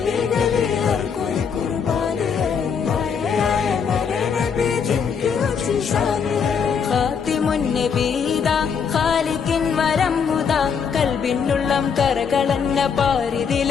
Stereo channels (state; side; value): quieter; right; 6.5 dB